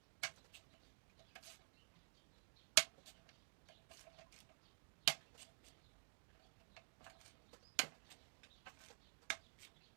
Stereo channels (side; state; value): left; silent; digital silence